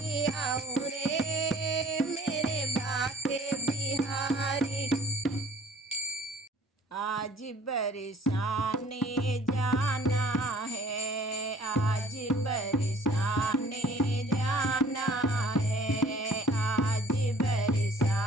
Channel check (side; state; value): both; normal; correlation 0.53